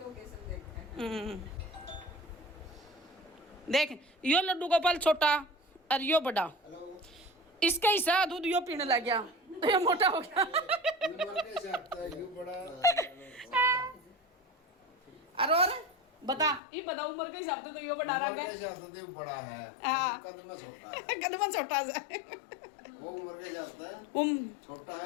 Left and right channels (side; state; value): right; drops out; at 16.6 s